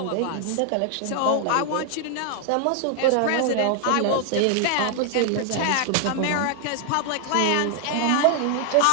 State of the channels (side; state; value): both; different; correlation 0.00